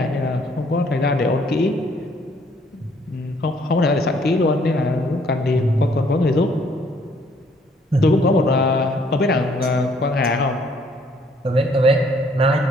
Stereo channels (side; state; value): both; normal; correlation 0.64